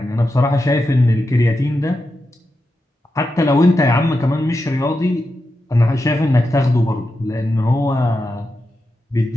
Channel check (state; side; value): normal; both; correlation 0.88